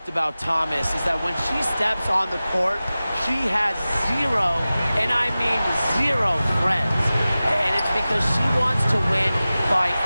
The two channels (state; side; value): inverted; both; correlation -0.96